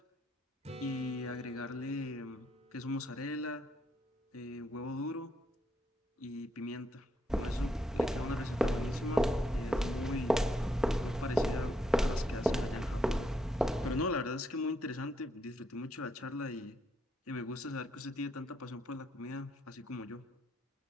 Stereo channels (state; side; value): normal; both; correlation 0.76